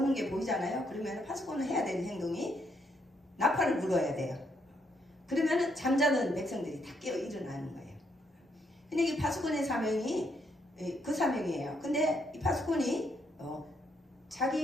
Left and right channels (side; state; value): both; normal; correlation 0.74